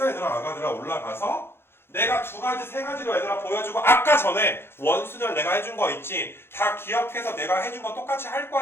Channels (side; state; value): right; late; 0.11 ms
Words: 얘들아? 아가들아 올라가서 내가 2가지 3가지로 얘들아 보여주고, 아까 전에 원순열 내가 해준 거 있지? 다 기억해서 내가 해준 거 똑같이 할